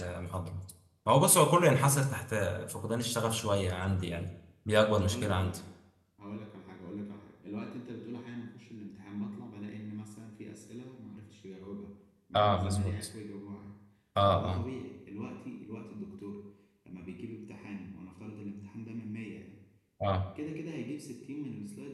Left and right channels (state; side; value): identical; both; correlation 1.00